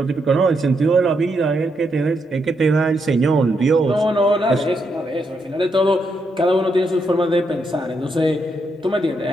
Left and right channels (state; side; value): normal; both; correlation 0.80